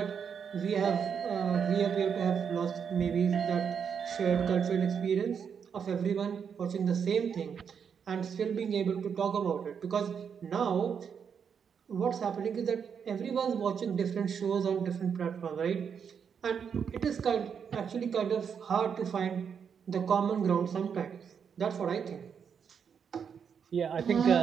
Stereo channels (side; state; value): left; quieter; 7.1 dB